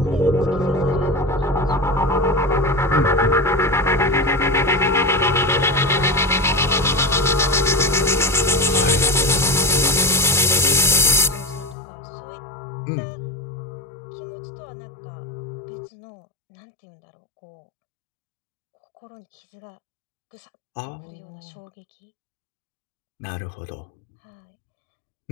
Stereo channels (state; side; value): drops out; right; at 11.8 s